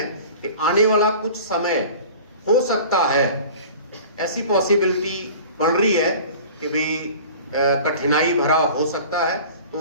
कि आने वाला कुछ समय हो सकता है, ऐसी पॉसिबिलिटी बन रही है कि भी कठिनाई भरा हो सकता है, तो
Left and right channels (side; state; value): both; inverted; correlation -0.42